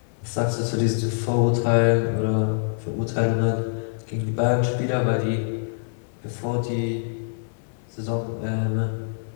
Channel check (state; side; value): silent; right; 62 dB below the other